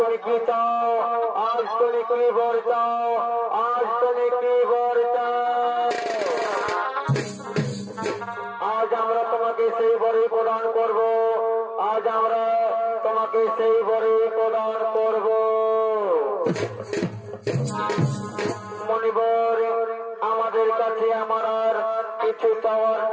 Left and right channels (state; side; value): identical; both; correlation 1.00